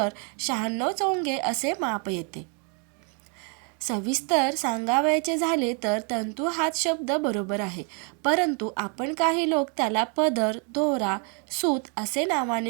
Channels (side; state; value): left; quieter; 38.4 dB